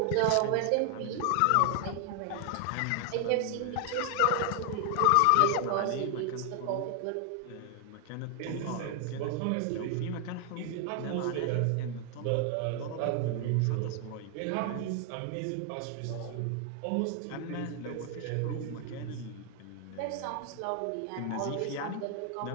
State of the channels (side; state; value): both; different; correlation 0.00